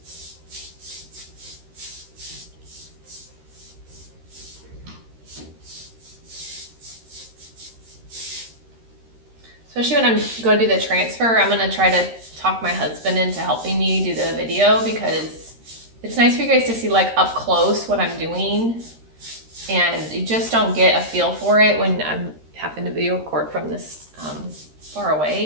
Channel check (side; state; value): left; late; 13 ms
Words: Especially when I'm going to do the transfer, I'm going to try to talk my husband into helping me do the video, because it's nice for you guys to see like up close what I'm doing, and you just don't get a feel for it when I'm having to video record from this far